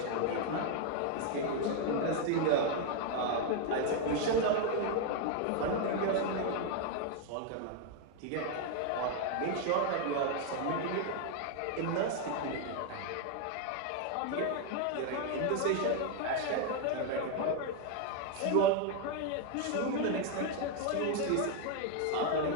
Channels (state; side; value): different; both; correlation 0.01